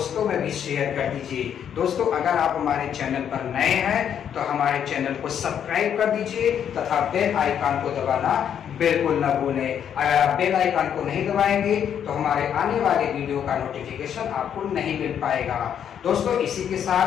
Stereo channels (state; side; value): quieter; right; 8.8 dB